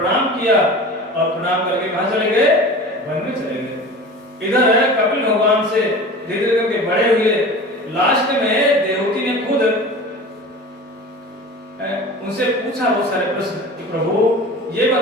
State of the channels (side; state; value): both; normal; correlation 0.36